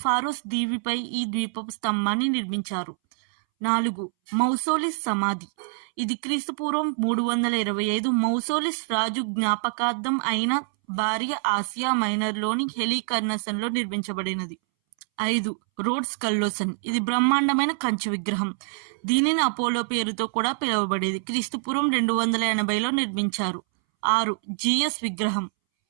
ఫారోస్ దీవిపై ఈ ద్వీపపు స్తంభాన్ని నిర్మించారు. 4. మౌసోలిస్ సమాధి. ఇది క్రీస్తుపూర్వం 325 మౌసోలిస్ రాజు జ్ఞాపకార్థం అయిన భార్య ఆసియా మైనర్లోని హెలికర్నసన్లో నిర్మించబడినది. 5. రోడ్స్ కల్లోసన్. ఇది బ్రహ్మాండమైన కంచు విగ్రహం. దీనిని అపోలో పేరుతో కూడా పిలువబడేది. క్రీస్తుపూర్వం 280లో నిర్మించారు. 6. జియస్ విగ్రహం.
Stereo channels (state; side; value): silent; left; 61 dB below the other